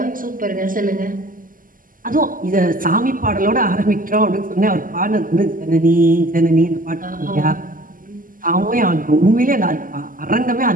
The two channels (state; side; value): late; left; 0.40 ms